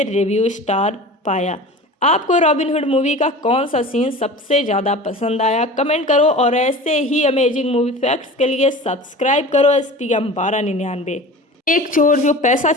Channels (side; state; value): both; normal; correlation 0.37